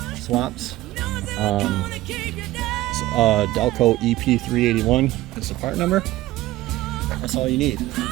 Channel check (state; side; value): quieter; left; 16.5 dB